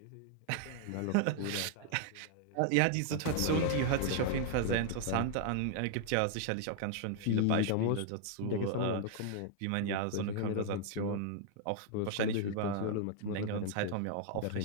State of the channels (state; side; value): different; both; correlation 0.00